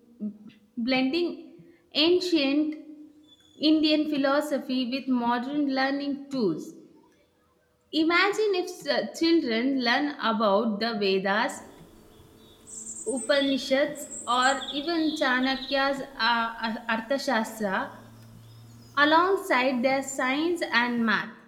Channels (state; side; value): identical; both; correlation 1.00